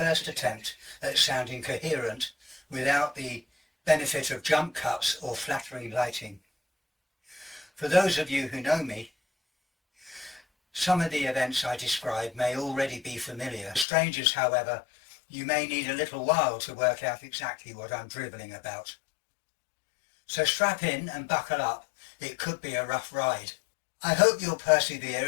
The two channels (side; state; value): right; drops out; at 13.9 s